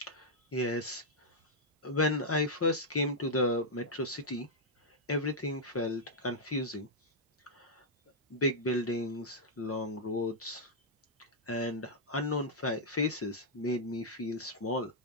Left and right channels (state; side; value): normal; both; correlation -0.06